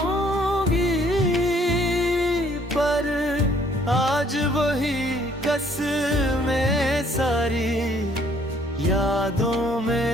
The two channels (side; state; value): both; normal; correlation 0.62